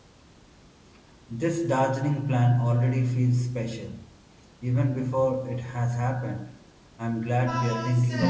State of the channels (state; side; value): identical; both; correlation 1.00